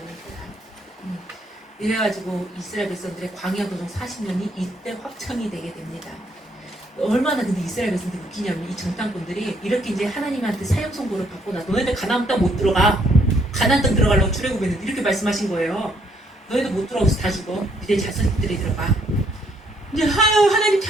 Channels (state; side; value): normal; both; correlation 0.69